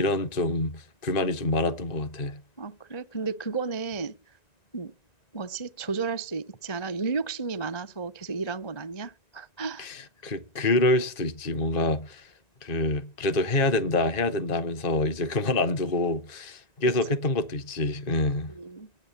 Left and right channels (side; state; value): right; late; 1.9 ms